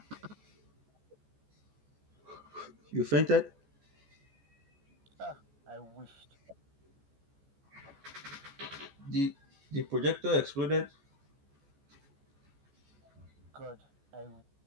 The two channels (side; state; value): left; late; 14 ms